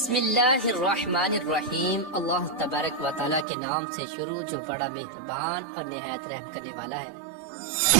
اللہ الرحمن الرحیم۔ اللہ تبارک و تعالیٰ کے نام سے شروع جو بڑا مہربان اور نہایت رحم کرنے والا ہے۔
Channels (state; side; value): drops out; left; at 3.5 s